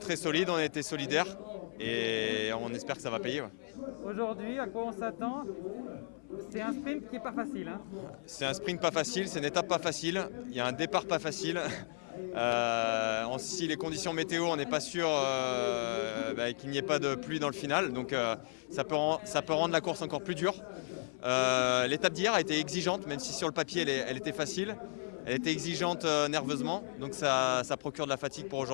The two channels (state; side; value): silent; right; 55 dB below the other